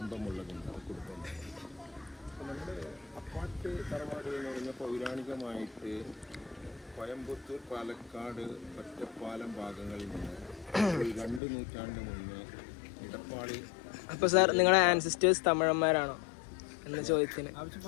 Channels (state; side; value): drops out; right; at 11.4 s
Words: ഇമ്പമുള്ളതുണ്ടാണ് കുടുംബം. നമ്മുടെ അപ്പാട്ട് തറവാട് എന്ന് പറയുന്ന പൗരാണികമായിട്ട് കോയമ്പത്തൂർ, പാലക്കാട്, ഒറ്റപ്പാലം ഭാഗങ്ങളിൽ നിന്ന് 2 നൂറ്റാണ്ട് മുന്നേ ഇടപ്പാളി. അപ്പൊ സാർ, നിങ്ങളുടെ ആൻസിസ്റ്റേഴ്സ് തമിഴന്മാരാണോ എന്ന ചോദ്യത്തിന്